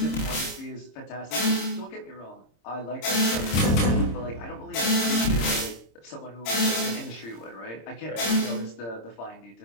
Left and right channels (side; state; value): right; late; 26 ms